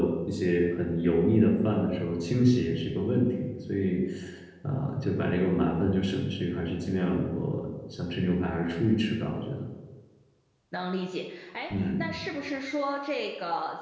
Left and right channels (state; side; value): identical; both; correlation 1.00